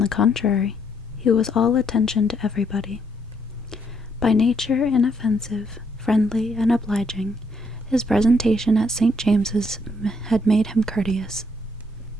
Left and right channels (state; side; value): normal; both; correlation 0.72